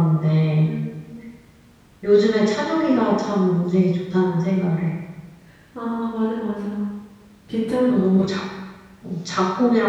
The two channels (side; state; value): both; identical; correlation 1.00